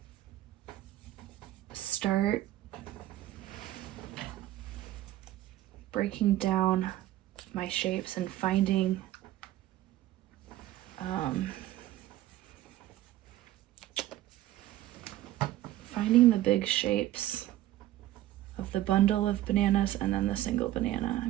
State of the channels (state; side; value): quieter; left; 14.5 dB